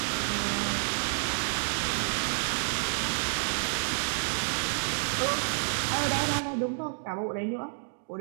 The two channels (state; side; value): silent; left; digital silence